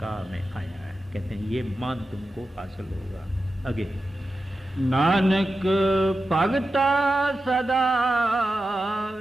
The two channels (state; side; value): normal; both; correlation 0.92